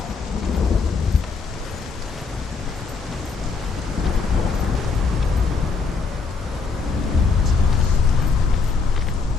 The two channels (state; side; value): quieter; right; 4.7 dB